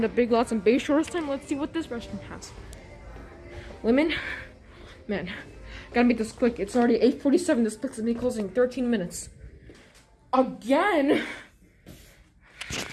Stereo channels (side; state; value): both; identical; correlation 1.00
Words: the Big Lots and Bayshore this time. Let's see what this restaurant has. Women, man, gotta make this quick. It's already 8:47. This place is me closing 13 minutes. Again.